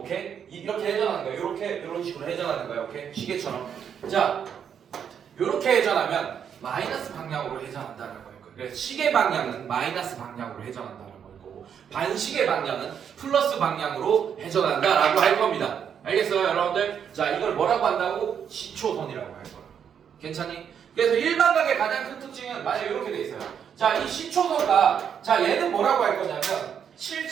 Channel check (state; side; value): quieter; left; 8.0 dB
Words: 이렇게 회전하는 거예요. 요렇게 이런 식으로 회전하는 거예요. 오케이? 시계처럼. 자, 요렇게 회전하면 마이너스 방향으로 회전한다라고 할 거예요. 그래서 시계 방향은 마이너스 방향으로 회전한다라고 할 거고, 반시계 방향은 플러스 방향으로 회전한다라고 할 겁니다. 알겠어요, 여러분들? 자, 이걸 뭐라고 한다고? 시초선이라고 할 거예요. 괜찮니? 그래서 일반각의 가장 큰 특징은 만약에 이렇게 돼 있어요. 자, 이 시초선과, 자, 얘는 뭐라고 할 거냐면